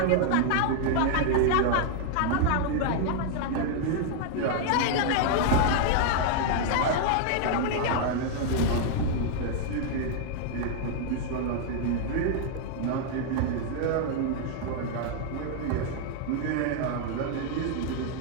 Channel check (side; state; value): both; different; correlation -0.01